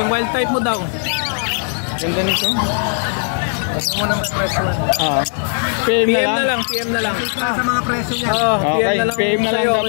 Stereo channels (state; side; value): silent; right; 58 dB below the other